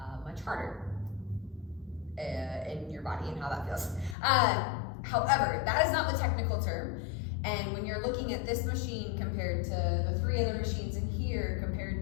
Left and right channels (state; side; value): drops out; right; at 4.2 s